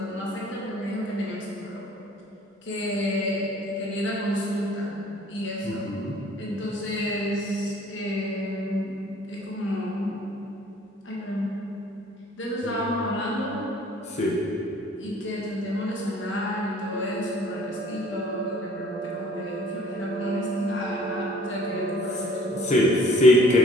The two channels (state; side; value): normal; both; correlation 0.54